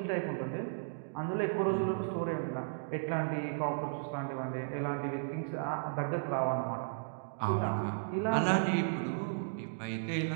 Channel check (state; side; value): silent; left; digital silence